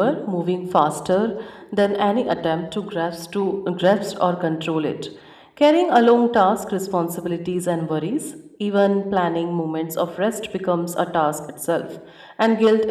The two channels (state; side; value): identical; both; correlation 1.00